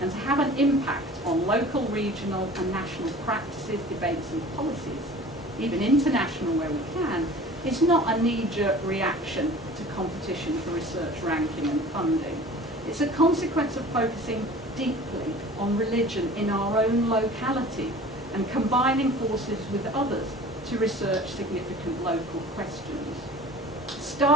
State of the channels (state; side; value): normal; both; correlation 0.43